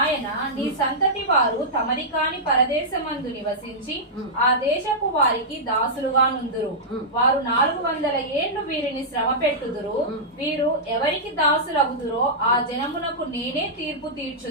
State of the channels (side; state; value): both; normal; correlation -0.12